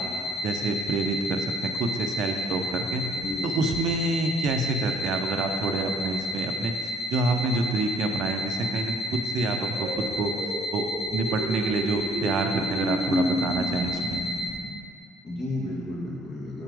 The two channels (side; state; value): both; normal; correlation 0.60